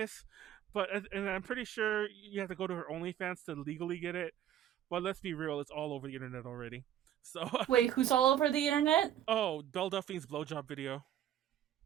and I'm pretty sure you have to go to her OnlyFans to legally get it. But let's be real, it's all over the internet already. So Wait, who's all over the internet? Oh, Belle Delphine's blowjob video.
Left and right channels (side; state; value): left; quieter; 11.3 dB